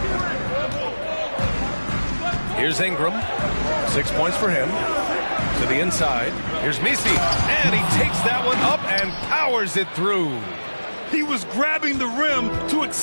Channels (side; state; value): both; inverted; correlation -1.00